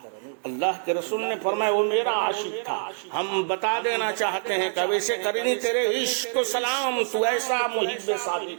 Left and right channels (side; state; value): left; silent; 61 dB below the other